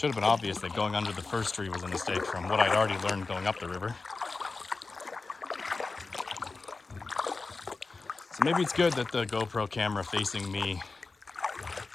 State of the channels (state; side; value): quieter; right; 3.9 dB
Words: have been obvious that going under the first tree was a mistake from what I'd already learned going up the river. So maybe it's good that the GoPro camera facing me